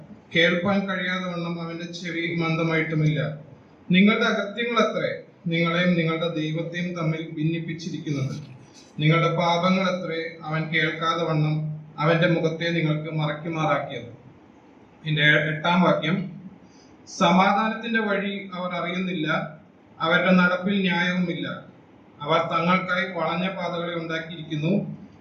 കേൾപ്പാൻ കഴിയാതെ വണ്ണം അവന്റെ ചെവി മന്ദമായിട്ടുമില്ല. നിങ്ങളുടെ അകത്യങ്ങൾ എത്രേ നിങ്ങളെയും നിങ്ങളുടെ ദൈവത്തെയും തമ്മിൽ ഭിന്നിപ്പിച്ചിരിക്കുന്നത്. നിങ്ങളുടെ പാപങ്ങൾ എത്രേ അവൻ കേൾക്കാതെ വണ്ണം അവന്റെ മുഖത്തെ നിങ്ങൾക്ക് മറയ്ക്കുമാറാക്കിയത്. ഇതിന്റെ 8-ാം വാക്യം. സമാധാനത്തിന്റെ വഴി അവർ അറിയുന്നില്ല, അവരുടെ നടപ്പിൽ ന്യായവുമില്ല. അവർ തങ്ങൾക്കായി വളഞ്ഞ പാതകളെ ഉണ്ടാക്കിയിരിക്കുന്നു,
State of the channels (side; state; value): both; identical; correlation 1.00